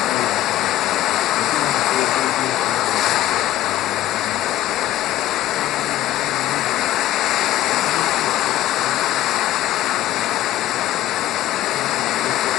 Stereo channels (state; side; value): quieter; right; 14.0 dB